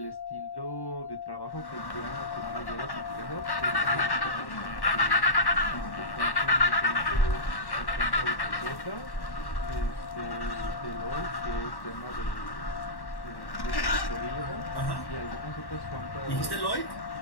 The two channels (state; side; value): late; right; 1.1 ms